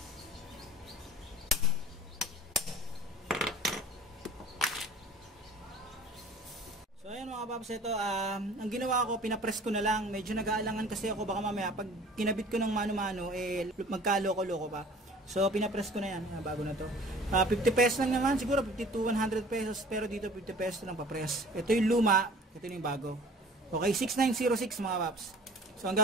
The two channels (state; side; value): normal; both; correlation 0.46